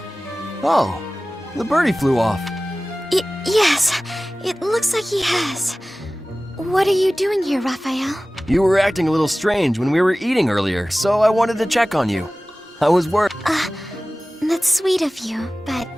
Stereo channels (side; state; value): both; normal; correlation 0.97